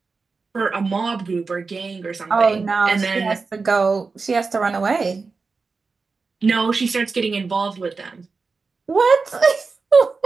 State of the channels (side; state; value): left; quieter; 4.4 dB